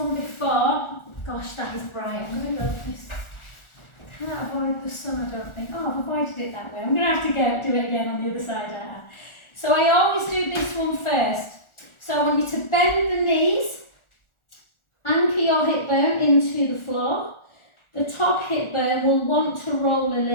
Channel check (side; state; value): right; late; 1.4 ms